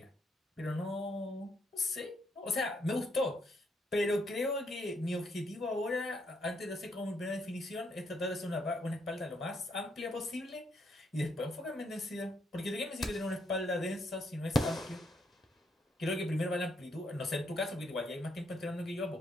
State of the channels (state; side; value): normal; both; correlation 0.75